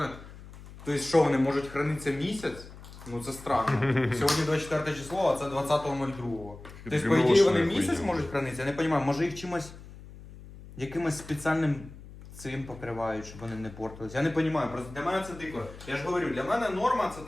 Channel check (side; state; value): left; noise; hum, 17 dB below the sound